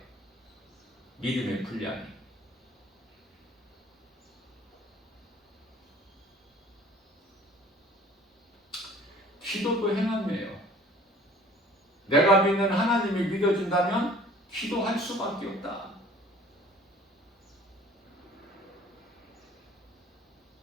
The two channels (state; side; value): normal; both; correlation 0.50